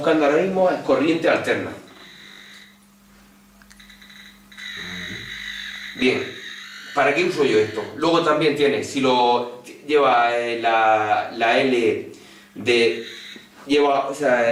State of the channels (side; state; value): both; identical; correlation 1.00